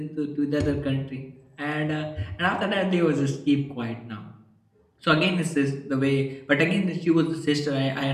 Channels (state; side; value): identical; both; correlation 1.00